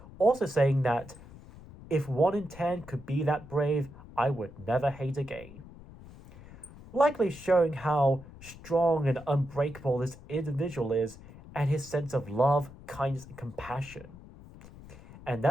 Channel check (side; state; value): left; noise; rumble, 18 dB below the sound